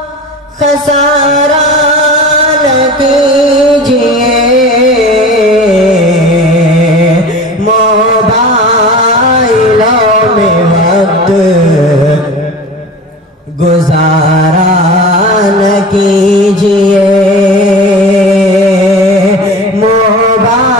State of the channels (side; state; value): both; normal; correlation 0.36